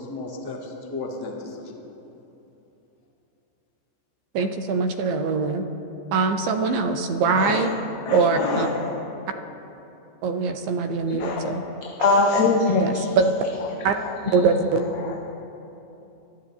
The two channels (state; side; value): late; left; 15 ms